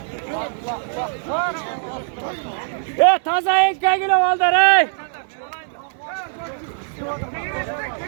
Taza ekka gülü valdır ey.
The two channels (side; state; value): left; silent; digital silence